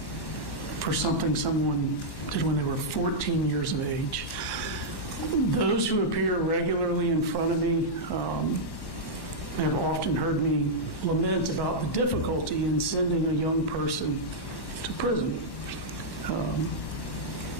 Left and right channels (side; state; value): right; late; 1.1 ms